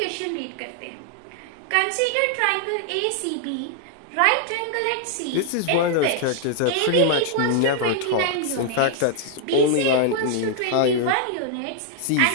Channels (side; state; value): both; different; correlation 0.00